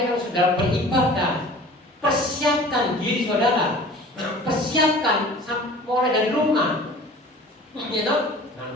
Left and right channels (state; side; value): normal; both; correlation 0.44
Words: kalau saudara beribadah, persiapkan diri saudara. Persiapkan mulai dari rumah, ya toh, dengan